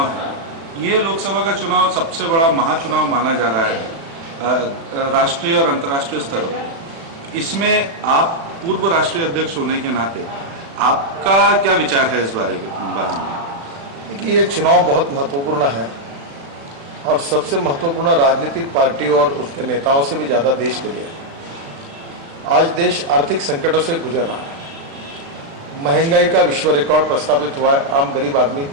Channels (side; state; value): left; late; 36 ms